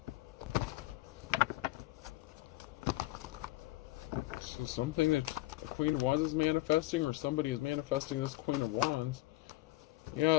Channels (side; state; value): right; quieter; 18.3 dB